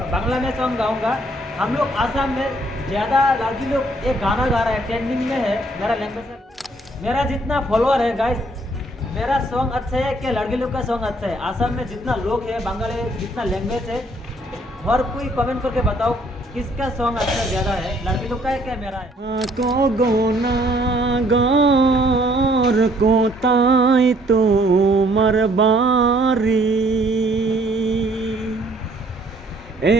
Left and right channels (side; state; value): both; normal; correlation 0.63